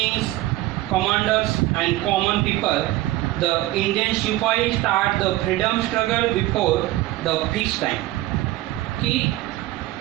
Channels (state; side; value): quieter; left; 16.9 dB